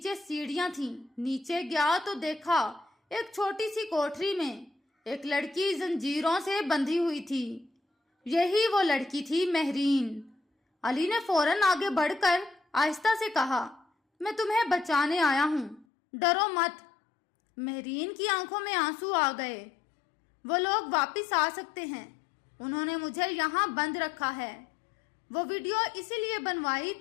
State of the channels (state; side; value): drops out; right; at 15.9 s